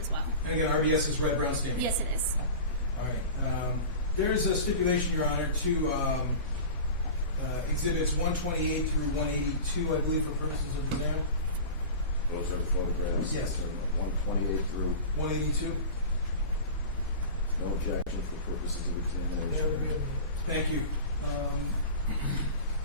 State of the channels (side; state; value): both; inverted; correlation -0.33